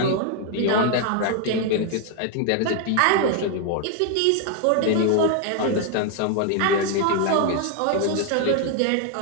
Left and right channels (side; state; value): both; different; correlation 0.00